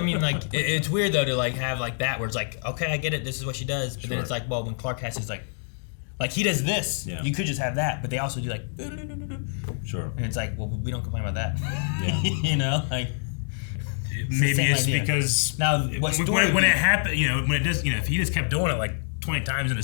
like, it's weird though to like have like that where it's like, okay, I get it, this is what she does. But then it's like, well, when Clark has his like he does this, you could just have that, but they also do like, sure. And it's like, well, we don't complain about that. Yeah. You know, like. Maybe it's because now when it happened, you know, when it does, you know, if he just kept doing it like 20 times in a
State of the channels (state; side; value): silent; right; 61 dB below the other